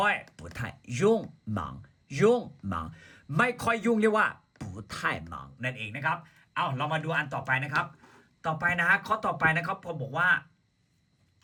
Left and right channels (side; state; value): both; identical; correlation 1.00